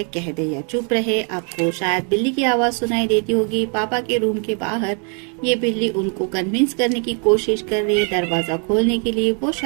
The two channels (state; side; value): quieter; left; 39.6 dB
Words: कह दे या चुप रहे, आपको शायद बिल्ली की आवाज सुनाई देती होगी। पापा के रूम के बाहर ये बिल्ली उनको कन्विंस करने की कोशिश कर रही है दरवाजा खोलने के लिए। वो